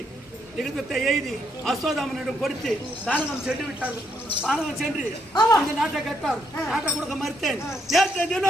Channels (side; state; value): both; normal; correlation 0.75